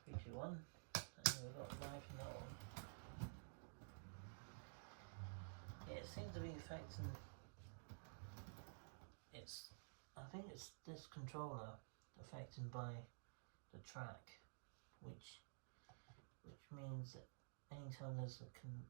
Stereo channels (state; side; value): silent; left; digital silence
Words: 3, 2, 1, and we've got life in that one. Yeah, it seems to be affecting. I think it's this controller affected by the track, which means that anytime there's a